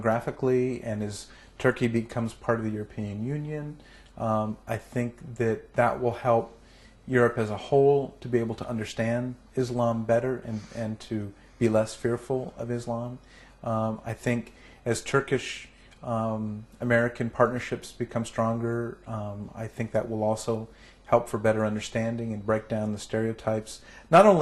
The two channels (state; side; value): identical; both; correlation 1.00